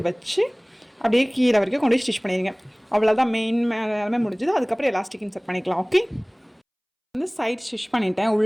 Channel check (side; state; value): both; identical; correlation 1.00